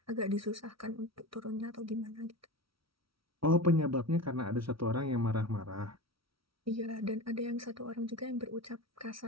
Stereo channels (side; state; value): left; late; 0.75 ms